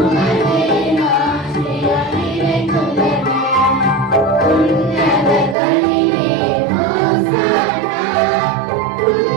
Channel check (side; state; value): left; drops out; at 5.6 s